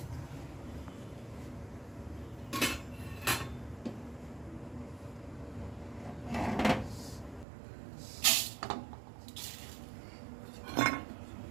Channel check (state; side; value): drops out; left; at 7.5 s